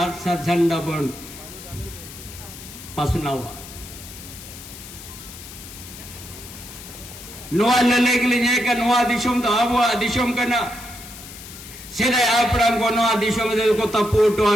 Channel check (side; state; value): left; noise; hiss, 15 dB below the sound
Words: सर झंडा बन पसनावा नोआ लले के लिए का नोआ दिशम तो आबुआ दिशम करना सीधा आपड़ांग को नोआ दिशम दे को तपोटो